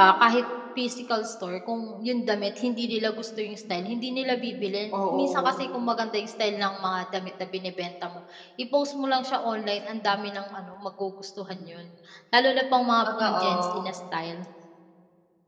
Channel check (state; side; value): identical; both; correlation 1.00